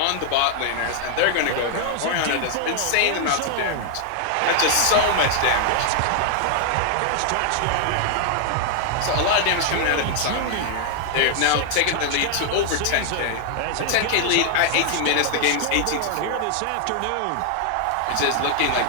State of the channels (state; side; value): different; both; correlation 0.00